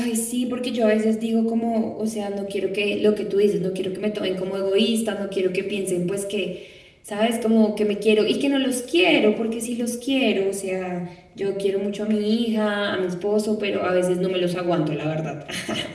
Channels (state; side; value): identical; both; correlation 1.00